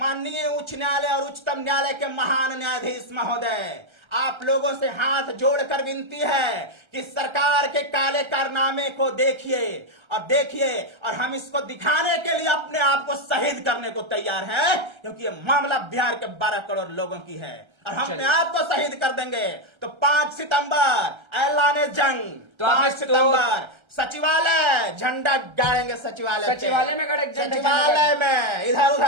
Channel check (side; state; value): left; late; 1.3 ms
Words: उच्च न्यायालय और उच्चतम न्यायालय के महान न्यायाधीश महोदय, आप लोगों से हाथ जोड़कर विनती है कि सरकार के काले कारनामे को देखिए और हम इसको दिखाने के लिए अपने आप को शहीद करने को तैयार हैं, क्योंकि ये मामला बिहार के 12 करोड़ लोगों की है और हम अपने आप को शहीद कर देंगे। तो 5 सितंबर ऐलान जंग, तो 5 सितंबर सचिवालय झंडा गाड़ेंगे, सचिवालय में खड़े झंडा सचिवालय में, इधर